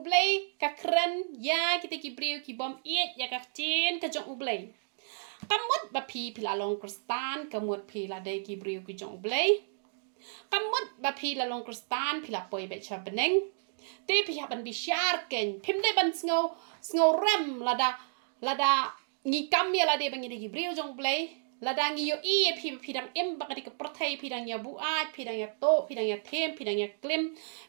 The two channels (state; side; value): silent; left; digital silence